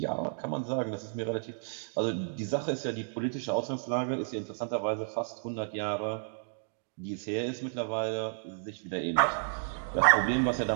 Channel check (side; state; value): left; silent; digital silence